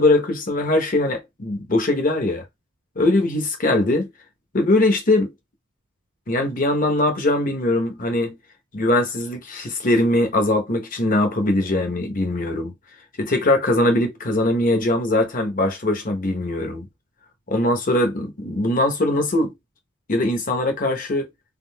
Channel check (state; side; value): normal; both; correlation 0.49